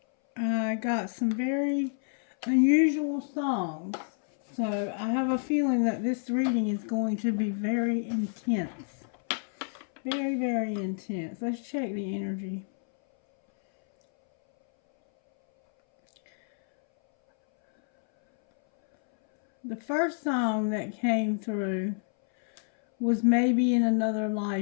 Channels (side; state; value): right; silent; 59 dB below the other